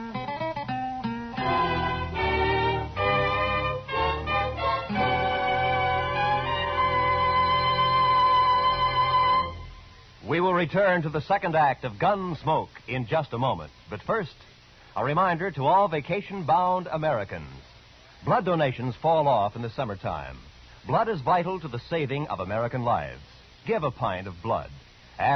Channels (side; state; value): both; identical; correlation 1.00